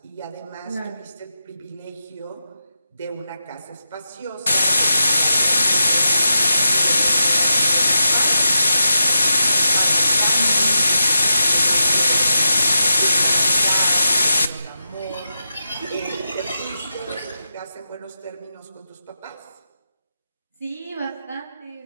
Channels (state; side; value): inverted; both; correlation -0.88